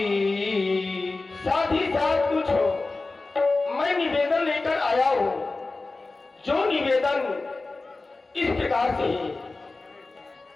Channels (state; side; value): quieter; right; 3.5 dB